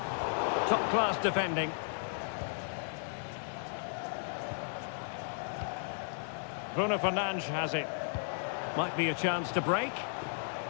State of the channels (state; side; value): silent; right; digital silence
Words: Top-class defending. Bruno Fernandes has it. Might be a chance to break.